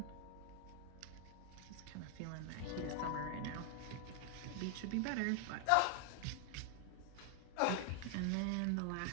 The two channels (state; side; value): different; both; correlation 0.00